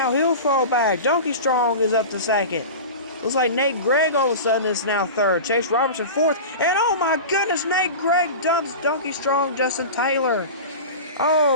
he'll fall back. Donkey Strong is up to second. Looks like Nate Gregg all of a sudden is now third. Chase Robertson fourth. And oh my goodness, Nate Gregg dumps Donkey Strong, Justin Taylor.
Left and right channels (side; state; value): both; inverted; correlation -0.30